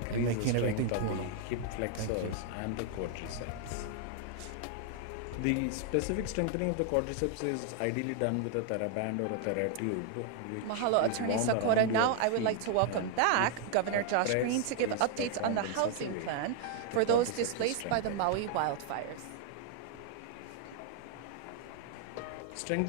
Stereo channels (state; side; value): different; both; correlation 0.00